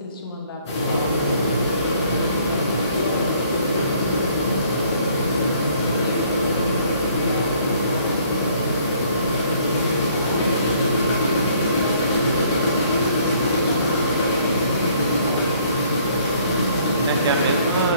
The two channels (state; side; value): inverted; both; correlation -0.61